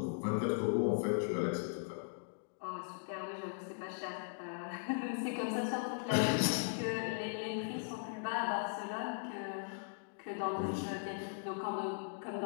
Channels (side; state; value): right; silent; digital silence